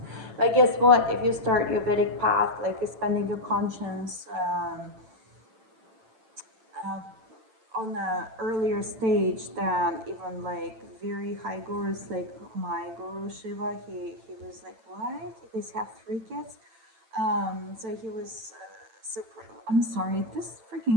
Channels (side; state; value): left; late; 9.0 ms